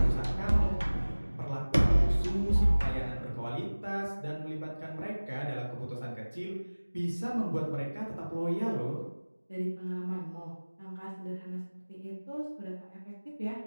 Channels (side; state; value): both; inverted; correlation -1.00